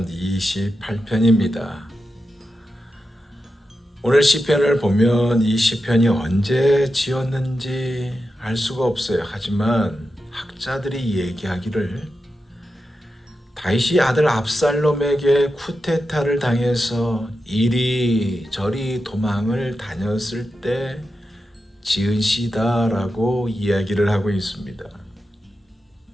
28편입니다. 오늘 시편을 보면 이 시편이 언제 지었는지 알 수가 없어요. 하지만 학자들이 얘기하기를 다윗이 아들 압살롬에게 쿠데타를 당해서 이리저리 도망을 다녔을 때 지은 시다라고 이야기를 하고 있습니다.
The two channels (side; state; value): both; normal; correlation 0.90